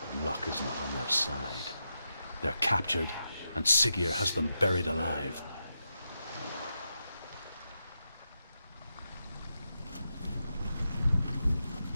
luck is not on their side. They're captured, and Siggeir has them buried alive.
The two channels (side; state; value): both; inverted; correlation -0.87